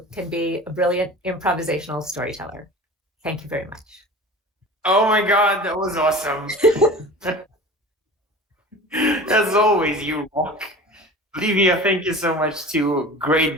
can be a brilliant improvisational storyteller. Thank you very much. Oh my God, that was awesome. As always, you rock. Livia, thank you so much too.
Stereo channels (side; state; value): both; normal; correlation 0.38